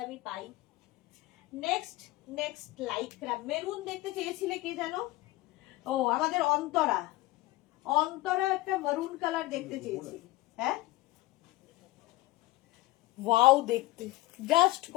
আমি পাই। নেক্সট লাইক্রা মেরুন দেখতে চেয়েছিলে কে জানো? ও, আমাদের অন্তরা একটা মেরুন কালার দেখতে চেয়েছি। হ্যাঁ, ওয়াও দেখতে, জাস্ট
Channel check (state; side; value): quieter; right; 19.1 dB